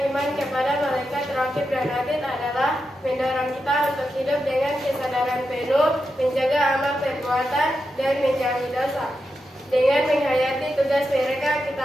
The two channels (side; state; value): both; normal; correlation 0.87